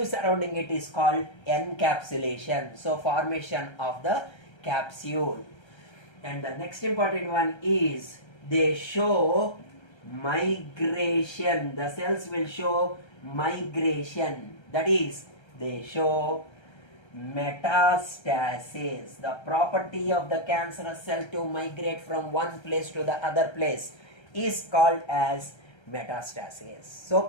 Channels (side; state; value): right; late; 1.3 ms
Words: surrounding it is called encapsulation. So formation of the capsule. And the next important one is they show migration. The cells will show migration. That is, they show metastasis. The property of the cancerous cell to migrate from one place to the other place is called as metastasis. So